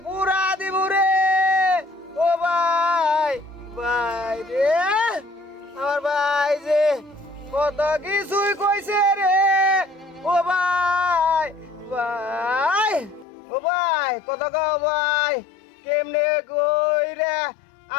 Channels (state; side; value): drops out; right; at 13.2 s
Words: পুরা দিব রে। ও ভাই, ভাই রে, আমার ভাই যে কত কিছুই কইছে রে। ও ভাই, ভাই, ও ভাই, কত গাও ভাই, কেমনে কই রে